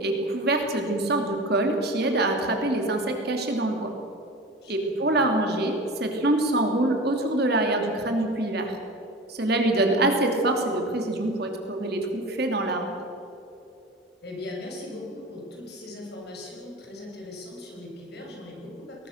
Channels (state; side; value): normal; both; correlation 0.34